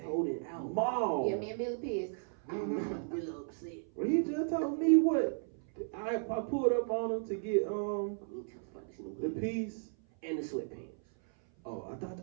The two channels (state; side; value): silent; left; 54 dB below the other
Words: Mall. Yeah, me and Billy pissed. I'm really upset. Well, he just told me what I pulled up on him to get the piece and the sweatpants. Oh, I